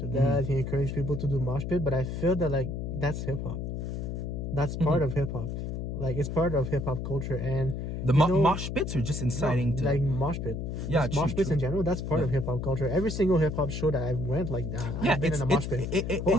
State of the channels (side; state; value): left; noise; hum, 4 dB below the sound